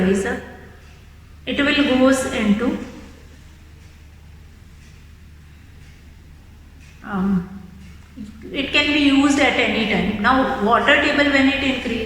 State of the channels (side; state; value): both; identical; correlation 1.00